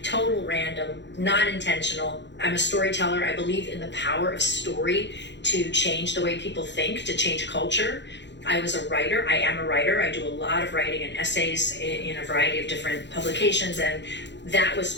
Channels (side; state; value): right; late; 0.52 ms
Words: Total random, not intentional. I'm a storyteller. I believe in the power of story to change the way people think, to change culture. I was a writer. I am a writer. I do a lot of writing and essays in a variety of different publications, and that was